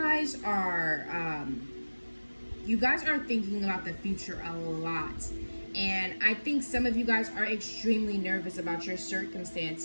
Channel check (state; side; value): inverted; both; correlation -1.00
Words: are thinking about the future a lot. And I think some of you guys are extremely nervous about your